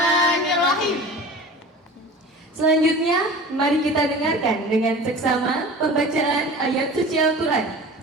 Selanjutnya, mari kita dengarkan dengan seksama pembacaan ayat suci Al-Quran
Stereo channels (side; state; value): both; normal; correlation 0.38